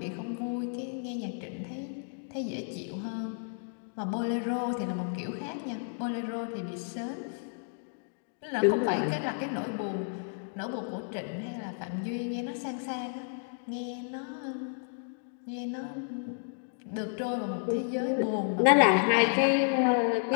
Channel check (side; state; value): right; silent; digital silence